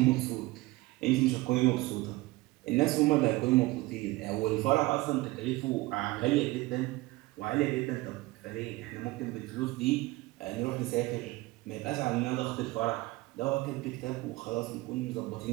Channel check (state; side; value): quieter; left; 20.4 dB